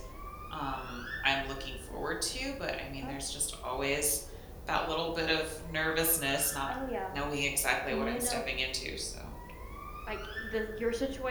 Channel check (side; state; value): both; identical; correlation 1.00